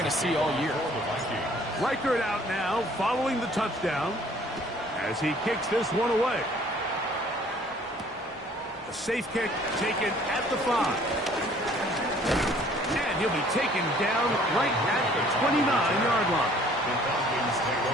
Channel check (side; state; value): both; normal; correlation 0.56